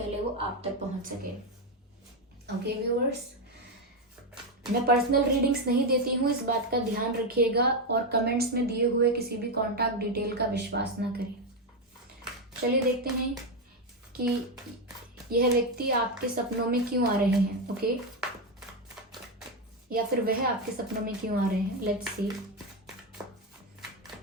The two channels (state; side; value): normal; both; correlation 0.07